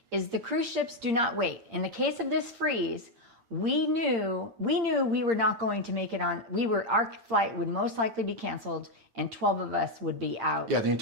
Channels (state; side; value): late; left; 8.8 ms